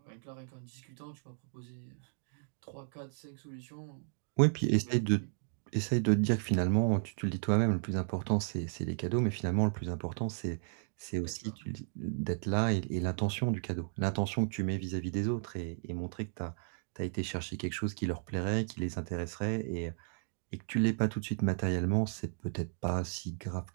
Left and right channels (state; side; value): silent; left; digital silence